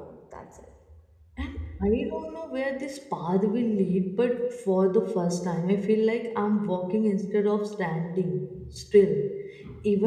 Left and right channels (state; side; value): identical; both; correlation 1.00